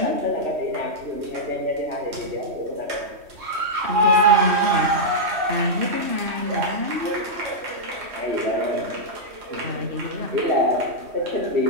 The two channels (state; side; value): late; left; 3.1 ms